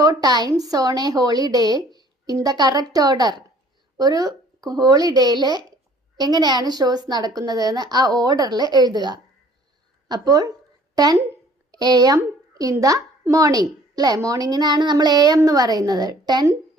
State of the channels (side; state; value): both; normal; correlation 0.55